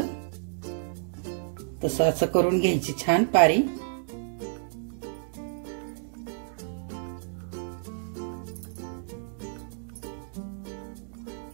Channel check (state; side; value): silent; left; digital silence